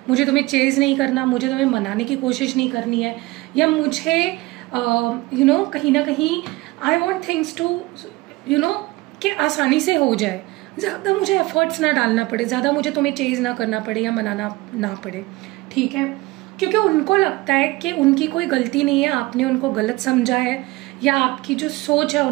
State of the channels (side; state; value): left; quieter; 21.0 dB